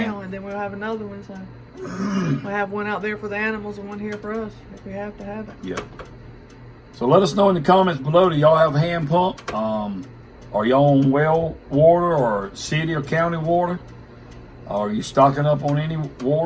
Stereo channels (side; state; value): both; identical; correlation 1.00